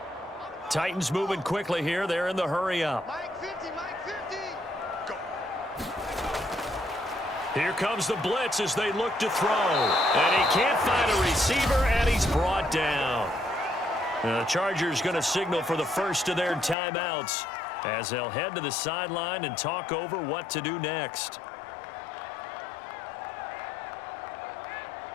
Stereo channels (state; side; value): drops out; right; at 16.8 s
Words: Titans moving quickly here. They're in the hurry up. Mike 50, Mike 50. Go. Here comes the blitz as they look to throw. And he can't find a receiver, and he's brought down. And the Chargers going to signal for the first of their timeouts as they'll head to the sideline and talk over what to do next.